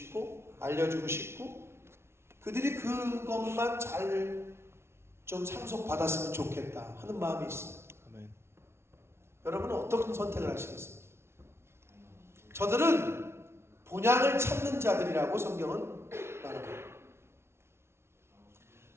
알려주고 싶고 그들이 그것만 잘 좀 상속받았으면 좋겠다 하는 마음이 있어요. 아멘. 여러분은 어떤 선택을 하시겠어요? 저들은 본향을 찾는 자들이라고 성경은 말합니다.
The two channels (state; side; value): late; left; 0.12 ms